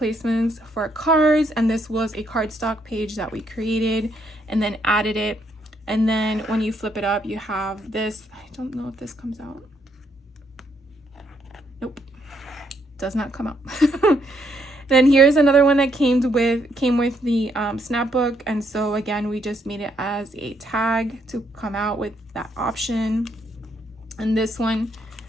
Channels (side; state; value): both; normal; correlation 0.73